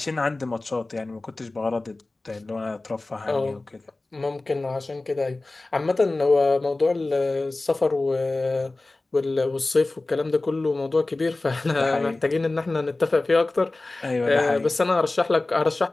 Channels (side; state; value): right; quieter; 3.1 dB